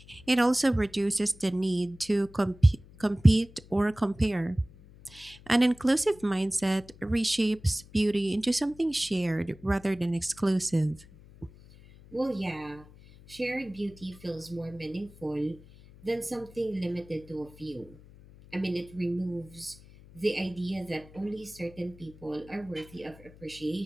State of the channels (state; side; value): noise; left; hum, 22 dB below the sound